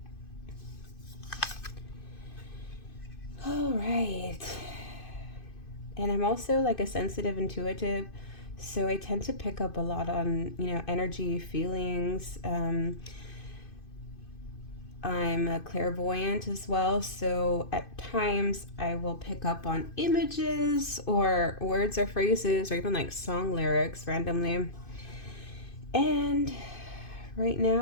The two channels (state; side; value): late; right; 2.5 ms